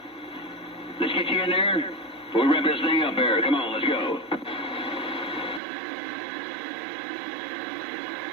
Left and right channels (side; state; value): left; drops out; at 5.6 s